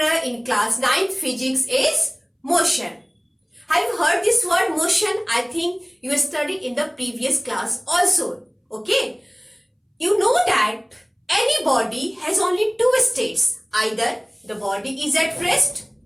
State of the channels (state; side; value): identical; both; correlation 1.00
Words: in class 9 physics is motion. Have you heard this word motion? I think you studied in the previous class also. Okay. You know that any body has only two states. Either the body is at rest